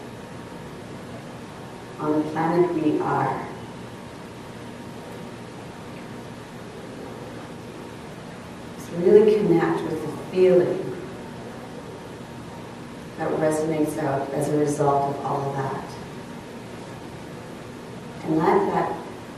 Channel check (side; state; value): both; identical; correlation 1.00